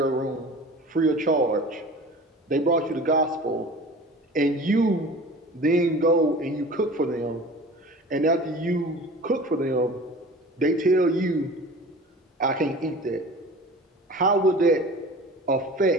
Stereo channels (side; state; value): both; normal; correlation 0.40